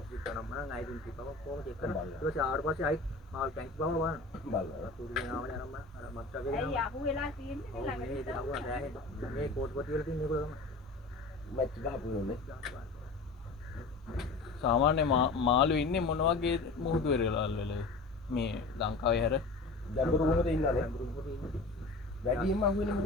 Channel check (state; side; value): quieter; right; 3.6 dB